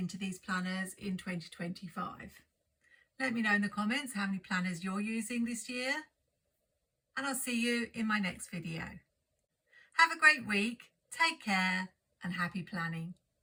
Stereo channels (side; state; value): both; identical; correlation 1.00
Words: these planners in 2025. Let me know in the comments how many planners you're using this year. And I'll see you in my next video. Have a great week, take care, and happy planning.